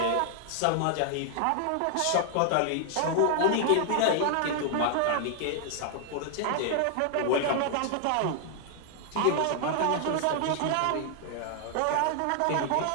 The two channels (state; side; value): different; both; correlation 0.00